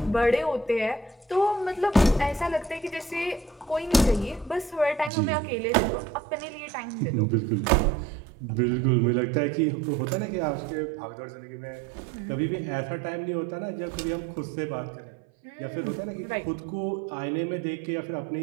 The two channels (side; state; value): left; drops out; at 5.1 s